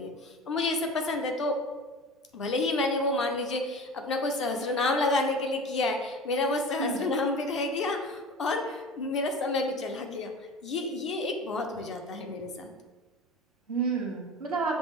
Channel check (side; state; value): both; normal; correlation 0.35